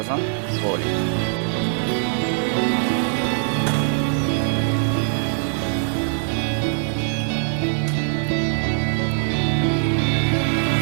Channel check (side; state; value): left; silent; 64 dB below the other